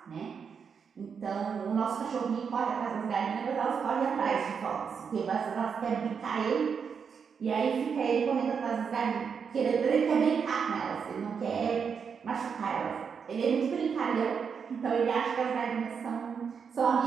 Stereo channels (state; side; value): quieter; left; 6.4 dB